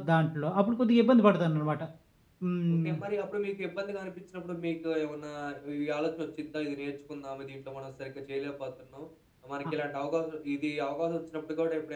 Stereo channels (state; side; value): identical; both; correlation 1.00